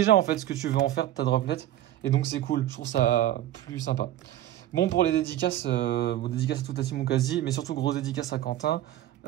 en fait ce que tu veux en faire de ta Droplet, et donc c'est cool, je trouve ça plus sympa. Bon pour les dédicaces, dédicaces à toute la team Mukazi, mais surtout grosse dédicace à Quentin,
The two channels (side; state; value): left; quieter; 13.3 dB